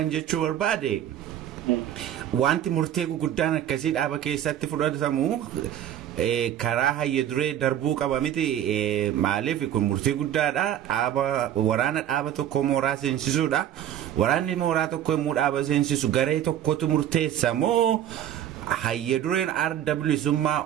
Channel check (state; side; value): quieter; left; 11.0 dB